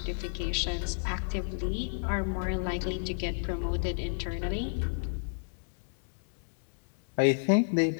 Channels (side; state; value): right; silent; digital silence